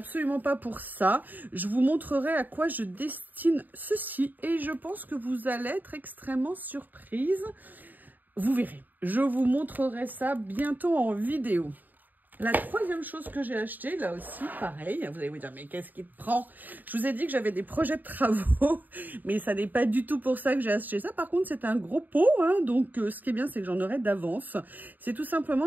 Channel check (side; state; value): left; late; 0.086 ms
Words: pas pour ça. Je vous montrerai à quoi je destine ceci. Et je pense que vous allez être extrêmement surprise. Vous verrez, je vous montrerai ça bientôt en vidéo. La troisième chose que j'ai achetée, là aussi, pareil, vous allez vous dire, mais qu'est-ce qui te prend? Je vous ai dit que j'avais des projets de travaux, mais ça n'est pas du tout pour ça que j'ai acheté ça. Par contre, c'est un gros pot, hein, donc ce qui est bien, c'est que j'en aurai d'avance. C'est tout